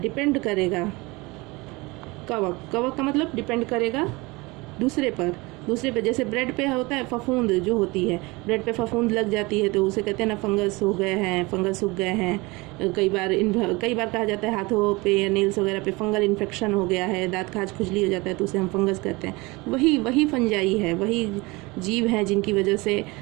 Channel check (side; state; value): left; quieter; 24.1 dB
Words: करेगा। कवक का मतलब डिपेंड करेगा दूसरे पर। जैसे ब्रेड पे होता है फफूंद जो होती है, ब्रेड पे फफूंद लग जाती है तो उसे कहते हैं ना फंगस हो गए हैं, फंगस सूख गए हैं। कई बार कहा जाता है हाथों पे या नेल्स वगैरह पे फंगल इन्फेक्शन हो गया है, दांत खाज खुजली हो जाता है तो उसे हम फंगस कहते हैं। वही फंजाई है, वही जीव हैं जिनकी वजह से